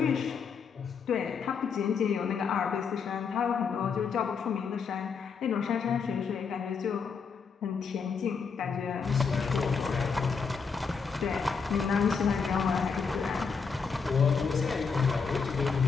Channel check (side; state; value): right; quieter; 5.6 dB